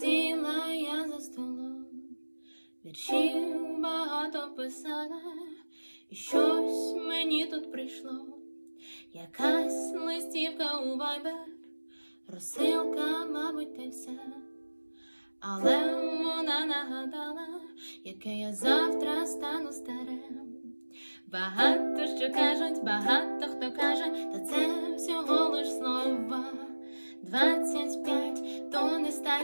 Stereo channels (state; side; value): inverted; both; correlation -1.00